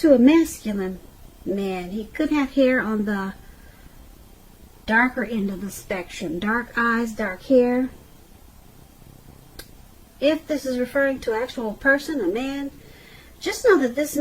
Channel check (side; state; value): both; identical; correlation 1.00